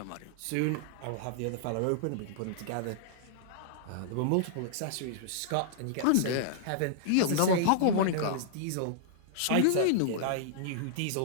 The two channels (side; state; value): both; different; correlation -0.01